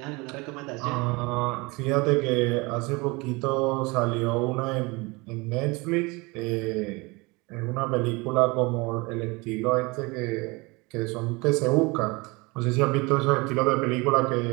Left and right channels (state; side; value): quieter; left; 25.6 dB